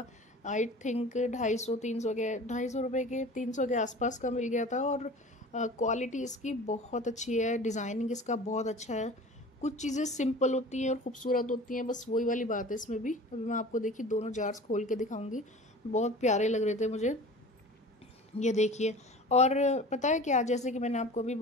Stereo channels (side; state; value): both; normal; correlation 0.40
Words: आई थिंक 250 रुपये के 300 के आसपास का मिल गया था। और क्वालिटी इसकी बहुत अच्छी है, डिज़ाइनिंग इसका बहुत अच्छा है। कुछ चीज़ें सिंपल होती हैं और खूबसूरत होती हैं, बस वही वाली बात है इसमें भी। अभी मैं आपको देखिए दोनों जार्स खोल के दिखाऊंगी, बहुत प्यारे लग रहे थे मुझे। ये देखिए। और पता है क्या, जैसे कि मैंने आपको भी